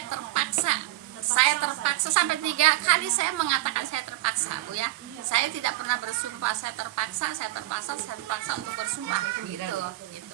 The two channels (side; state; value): left; quieter; 17.9 dB